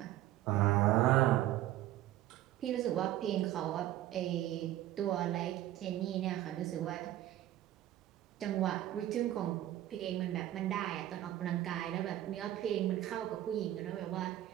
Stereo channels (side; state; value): left; quieter; 13.8 dB